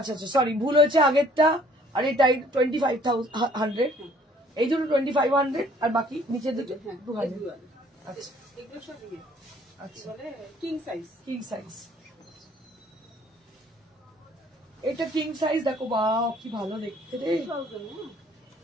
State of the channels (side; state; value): both; normal; correlation 0.58